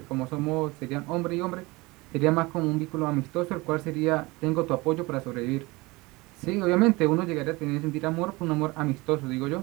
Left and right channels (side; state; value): left; quieter; 23.0 dB